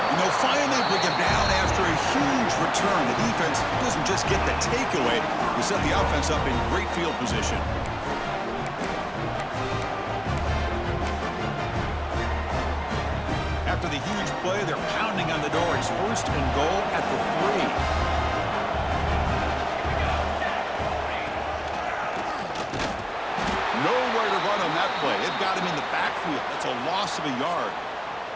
they'll finally bring him down after a huge return. The defense doesn't just get the takeaway. They set the offense up in great field position. After the huge play, they're pounding on the door. It's first and goal at the 3. Nowhere to run on that play. They've got him in the backfield. That's a loss of a yard.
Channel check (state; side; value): identical; both; correlation 1.00